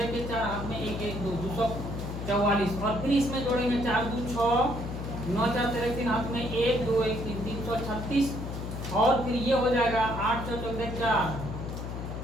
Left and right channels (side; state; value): left; noise; hum, 6 dB below the sound